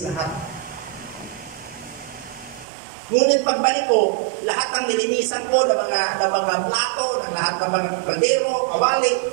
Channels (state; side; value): drops out; left; at 2.7 s